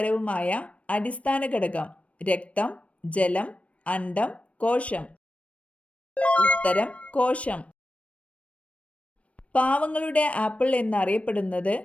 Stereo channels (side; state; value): right; late; 0.064 ms